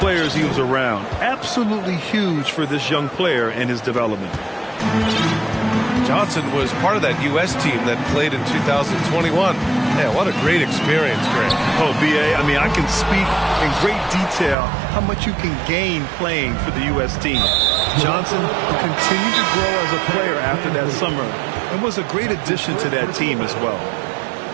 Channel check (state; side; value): drops out; left; at 14.6 s